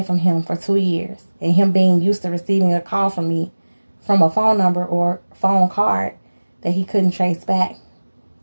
from him for 2 years, and him being used to receiving a call from me from a phone number or phone card that he couldn't trace back,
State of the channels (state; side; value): inverted; both; correlation -1.00